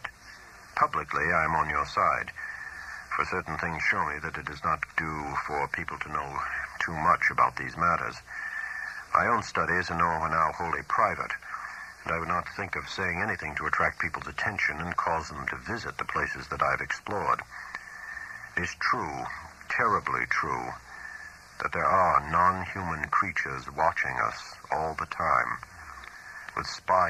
Publicly, I am on your side, for certain things show me that it does not do for people to know too much about these matters. My own studies are now wholly private, and I would not think of saying anything to attract people's attention and cause them to visit the places that I've explored. It is true, terribly true, that there are non-human creatures watching us all the time, with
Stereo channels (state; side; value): identical; both; correlation 1.00